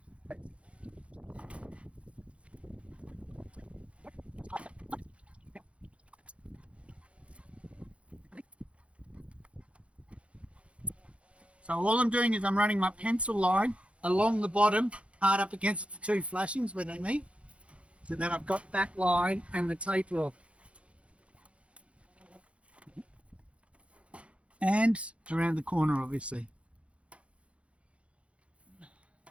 So all I'm doing is I'm running my pencil line along the bottom, hard up against the two flashings where they meet. So then I've got that line and the taper off. And around the corner, obviously.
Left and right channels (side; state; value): left; late; 0.061 ms